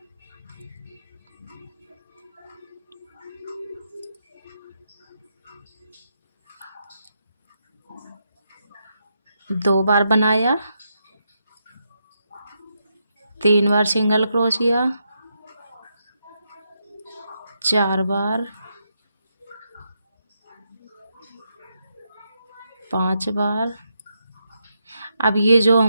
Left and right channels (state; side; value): inverted; both; correlation -0.82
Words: दो बार बनाया, 3 बार सिंगल क्रोशिया, 4 बार, 5 बार। अब ये जो